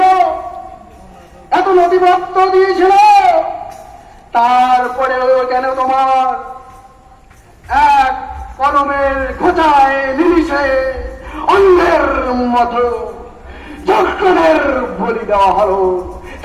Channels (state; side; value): identical; both; correlation 1.00